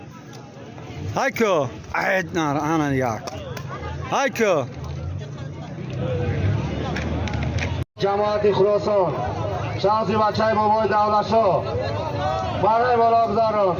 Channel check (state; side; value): identical; both; correlation 1.00